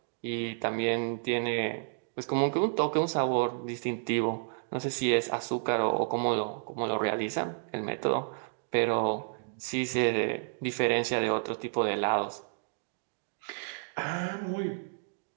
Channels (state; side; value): silent; left; digital silence